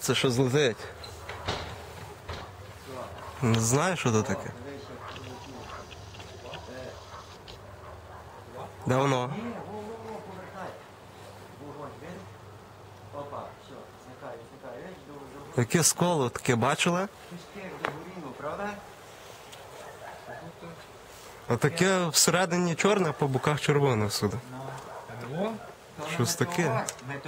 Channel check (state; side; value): identical; both; correlation 1.00